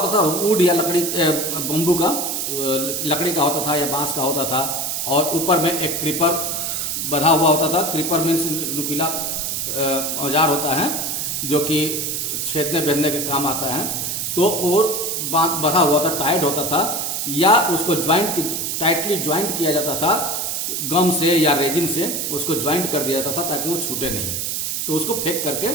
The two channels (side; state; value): right; noise; hiss, 1 dB below the sound